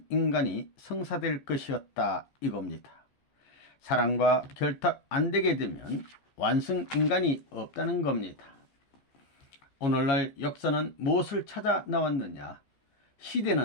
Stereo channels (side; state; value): right; late; 15 ms